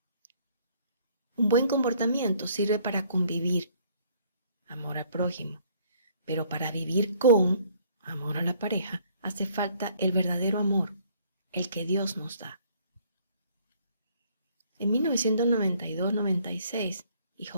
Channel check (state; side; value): inverted; both; correlation -0.60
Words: Un buen comportamiento sirve para convivir, amor al prójimo, pero para vivir con amor a la pareja hace falta el verdadero amor, el que Dios nos da. En 1992-96,